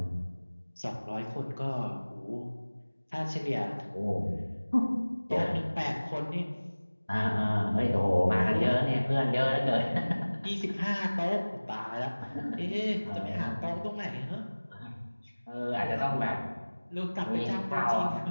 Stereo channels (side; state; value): both; inverted; correlation -1.00